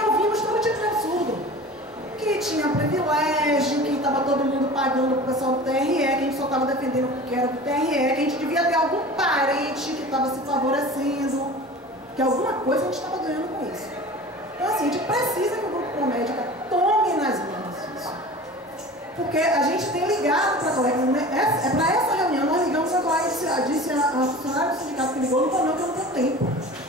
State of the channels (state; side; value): normal; both; correlation 0.38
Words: todo tipo de absurdo. Que tinha privilégio, que estava todo mundo pagando para o pessoal do TRE, que a gente só estava defendendo porque era do TRE, que a gente devia ter algum parente que estava se favorecendo, que alguma coisa a gente estava ganhando com isso. Então, assim, a gente precisa que o Grupo Promédica tome nas mãos isso. Porque a gente tem ligado para a colega, para essa reunião, nós ligamos a colega, disse a funcionária do sindicato que ligou, não falou que eu não tenho tempo.